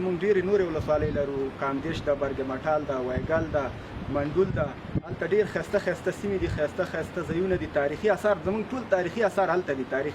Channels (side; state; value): both; identical; correlation 1.00